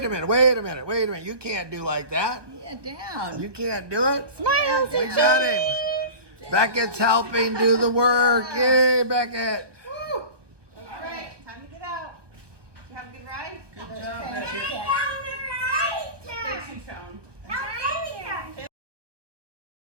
a minute. You can't do like that. Yeah, down. You can't do it. Smile. We got him. Beckett's helping do the work. Yay, Beckett. Woo. All right, time to get out. Did you have a good ride? Good job, Beckett. Thanks, you, Sean.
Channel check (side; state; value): left; late; 1.0 ms